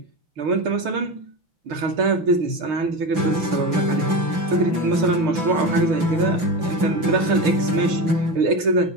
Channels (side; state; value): left; late; 5.9 ms